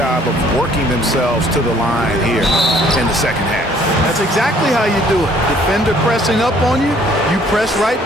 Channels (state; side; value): normal; both; correlation 0.60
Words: of working themselves to the line here in the second half. That's exactly how you do it. Defender pressing up on you, you press right